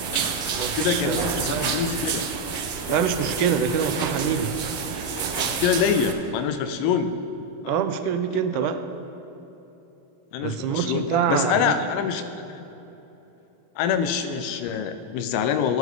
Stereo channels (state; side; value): late; right; 26 ms